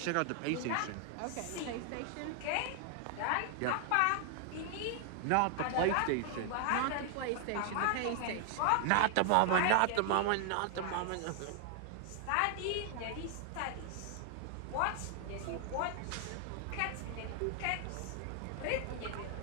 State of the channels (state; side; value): different; both; correlation 0.00